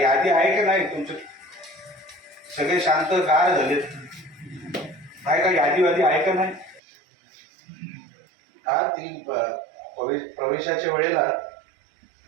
यादी आहे का नाही? तुमचे सगळे शांत गार झालेत. आहे का यादी आहे का नाही? हा, ती प्रवेशाच्या वेळेला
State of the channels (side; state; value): left; drops out; at 6.8 s